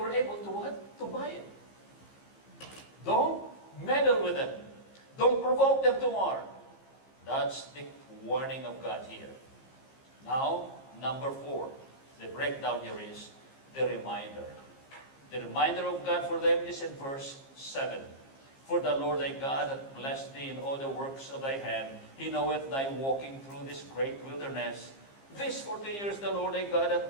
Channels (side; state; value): right; late; 15 ms